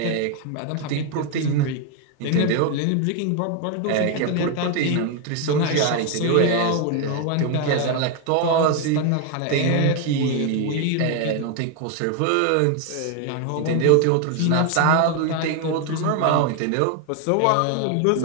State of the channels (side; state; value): both; different; correlation 0.01